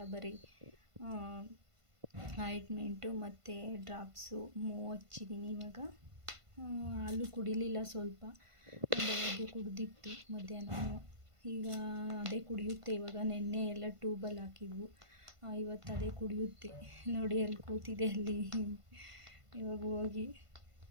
ಬರೀ ಆಯಿಂಟ್ಮೆಂಟು ಮತ್ತು ಡ್ರಾಪ್ಸು ಹಚ್ಚಿದ್ದೀನಿ. ಇವಾಗ ಹಾಲು ಕುಡಿಲಿಲ್ಲ, ಸ್ವಲ್ಪ ಬೆಳಗ್ಗೆ ಕುಡಿದಿತ್ತು ಮಧ್ಯಾಹ್ನ. ಈಗ ಅದೇ ಕುಡಿಯುತ್ತೆ ಇವಾಗ. ನೆನ್ನೆ ಎಲ್ಲ ಟ್ಯೂಬಲ್ಲಿ ಹಾಕಿದ್ವು, ಇವತ್ತು ಅದೇ ಕುಡಿಯುತ್ತೆ ನೋಡಿ. ಅಲ್ಲಿ ಕೂತಿದೆ, ಅಲ್ಲಿ ಇವಾಗ ಹೋಗಿ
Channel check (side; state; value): left; late; 1.5 ms